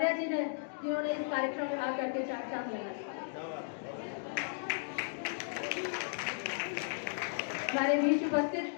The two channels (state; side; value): silent; right; digital silence